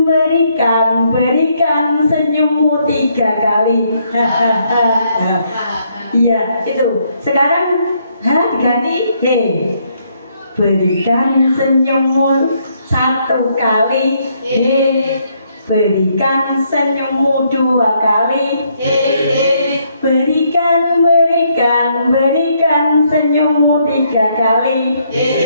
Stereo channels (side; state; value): both; inverted; correlation -0.72